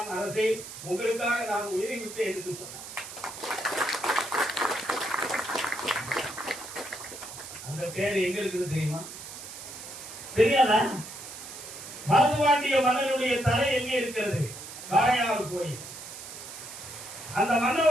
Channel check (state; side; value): noise; right; hiss, 12 dB below the sound